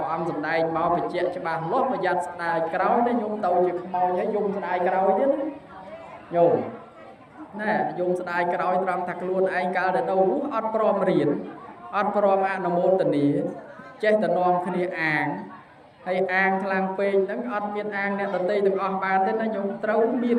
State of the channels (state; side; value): identical; both; correlation 1.00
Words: âm sầm đây mau bị chết cho bà lót bây giờ đài cào đấy nhung tàu chỉ mau nhảy dùng đài cào chứ nhung nè dùng đài cào trong thật luôn anh cao để đâu rút ọt prom riền ọt prom ăn môn tình ý chết tình non khi ăn hay ăn thang phê đắng ọt miên ăn nè tận tây từng ọt bàn thế nó nhung trâu miên